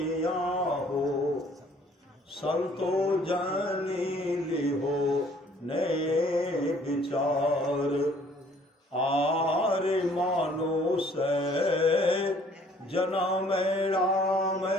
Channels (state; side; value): normal; both; correlation 0.59